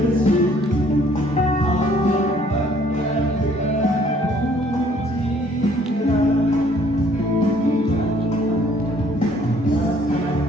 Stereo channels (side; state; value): both; normal; correlation 0.61